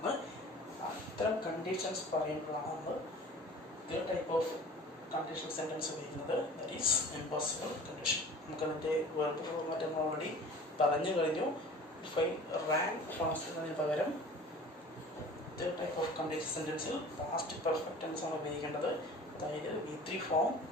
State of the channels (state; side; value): normal; both; correlation 0.43